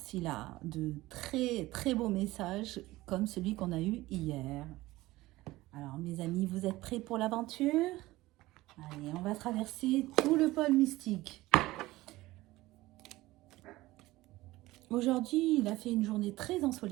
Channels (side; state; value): left; quieter; 18.2 dB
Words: a de très très beaux messages comme celui qu'on a eu hier. Alors mes amis, vous êtes prêts pour l'aventure? Allez, on va traverser tout le pôle mystique. Aujourd'hui, il a fait une journée très